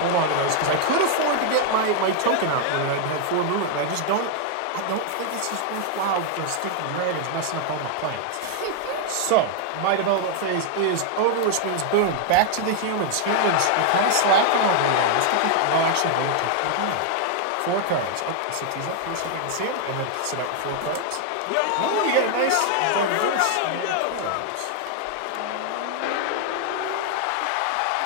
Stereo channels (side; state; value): both; different; correlation 0.00